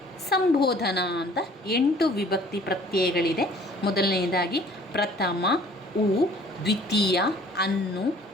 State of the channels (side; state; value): both; normal; correlation 0.54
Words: ಸಂಬೋಧನ ಅಂತ 8 ವಿಭಕ್ತಿ ಪ್ರತ್ಯಯಗಳಿದೆ. ಮೊದಲನೆಯದಾಗಿ ಪ್ರಥಮ ಉ, ದ್ವಿತೀಯ ಅನ್ನು,